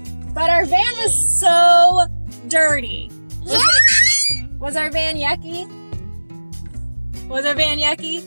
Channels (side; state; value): both; inverted; correlation -1.00